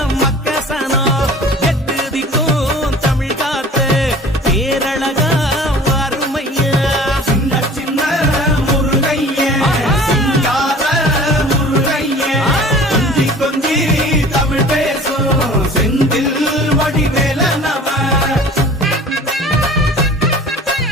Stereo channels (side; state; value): both; normal; correlation 0.45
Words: மக்கசனா, எட்டு திக்கும் தமிழ்